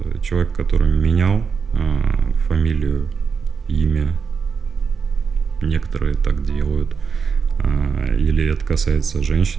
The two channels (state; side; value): quieter; left; 5.9 dB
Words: человека, который менял фамилию, имя, некоторые так делают, или это касается